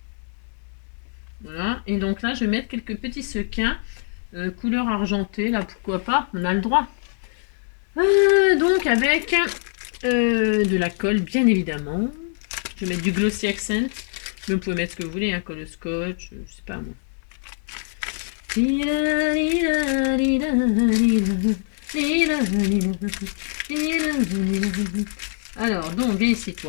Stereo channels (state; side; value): silent; right; digital silence